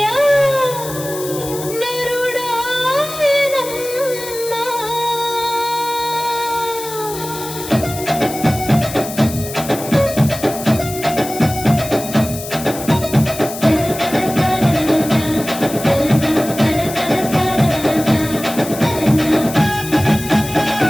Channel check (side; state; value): left; noise; hiss, 11 dB below the sound